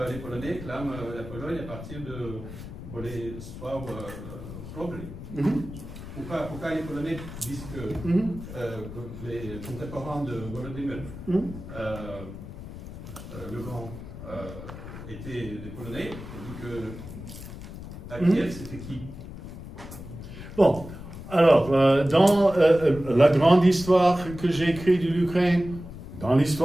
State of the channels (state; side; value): noise; left; rumble, 12 dB below the sound